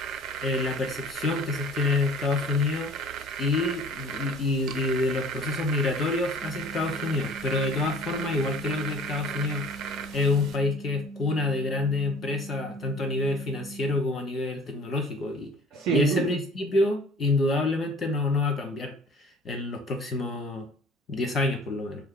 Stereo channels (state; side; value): normal; both; correlation 0.48